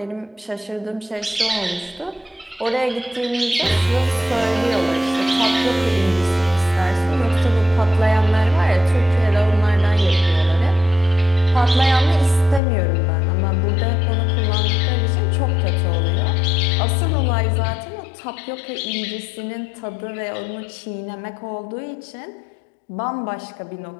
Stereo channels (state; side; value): drops out; right; at 12.6 s